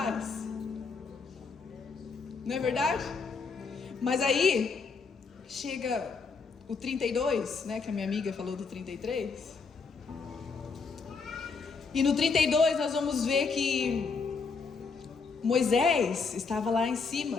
não é verdade? Mas aí chega o 32, né, que a minha amiga falou do 33. E no 32 nós vamos ver que Moisés estava lá em cima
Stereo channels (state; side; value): quieter; right; 4.9 dB